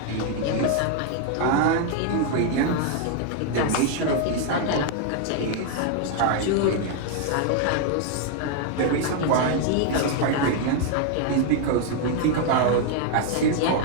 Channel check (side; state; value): both; different; correlation 0.00